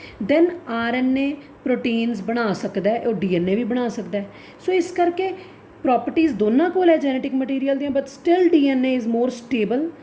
ਦੈਨ RNA ਪ੍ਰੋਟੀਨਸ ਬਣਾ ਸਕਦਾ, ਉਹ DNA ਵੀ ਬਣਾ ਸਕਦਾ। ਸੋ ਇਸ ਕਰਕੇ ਪ੍ਰੋਪਰਟੀਜ਼ ਦੋਨਾਂ ਕੋਲ ਹੈ ਜੈਨੇਟਿਕ ਮਟੀਰੀਅਲ ਦੀਆਂ, but still DNA is more stable.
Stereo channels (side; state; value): both; identical; correlation 1.00